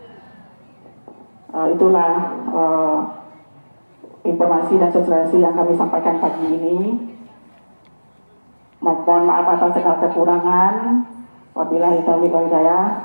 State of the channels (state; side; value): inverted; both; correlation -1.00